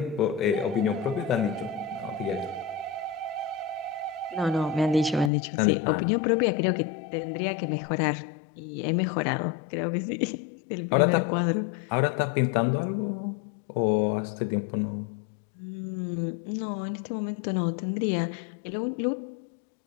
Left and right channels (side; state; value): right; drops out; at 5.3 s